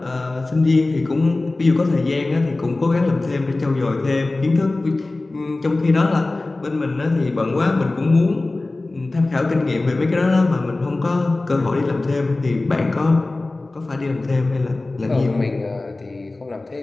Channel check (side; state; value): right; quieter; 3.1 dB